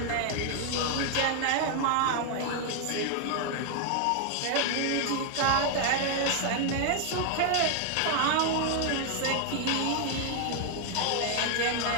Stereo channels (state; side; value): different; both; correlation 0.00